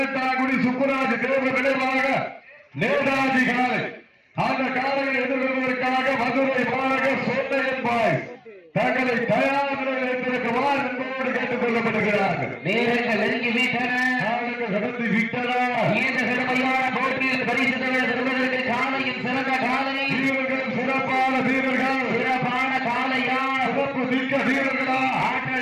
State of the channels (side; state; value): both; identical; correlation 1.00